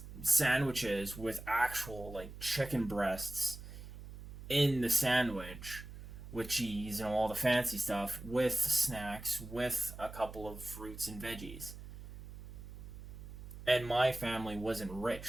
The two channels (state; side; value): noise; right; hum, 13 dB below the sound